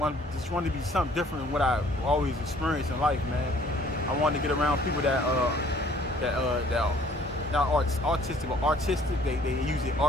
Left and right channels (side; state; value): both; normal; correlation 0.57